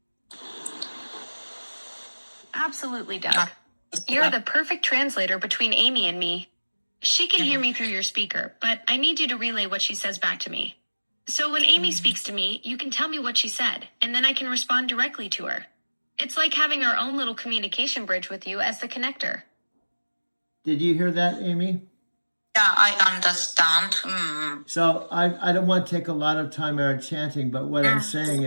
Absolutely, Doug. You're the perfect translator between Amy and me. She can hear me through your speaker, but I need you to relay what she says back to me. So when Amy speaks to me, you can tell me what she said, and then I can respond directly to her. It's like having our own little communication bridge with you as the connector. Did you hear that, Amy? Yeah, I understand. So I don't want to take a lot of time out chanting, but what I'm saying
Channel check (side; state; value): both; inverted; correlation -1.00